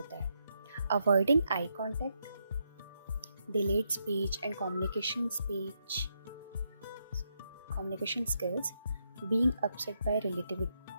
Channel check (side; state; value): both; inverted; correlation -0.80